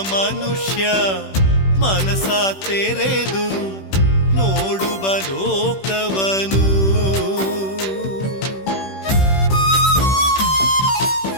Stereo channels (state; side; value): late; right; 16 ms